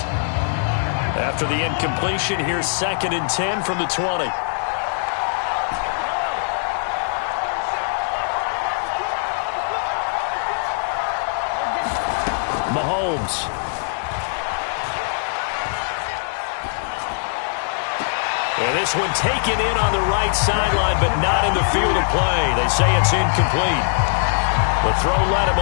After the incompletion, here's 2nd and 10 from the 20. Mahomes. And this one taken in on the right sideline, but not in the field of play. They say it's incomplete. The throw led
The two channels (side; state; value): right; silent; digital silence